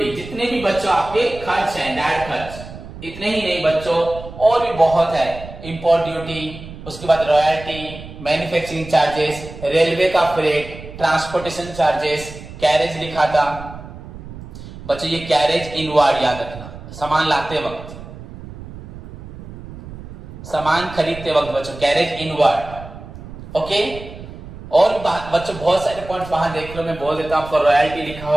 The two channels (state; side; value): noise; right; rumble, 14 dB below the sound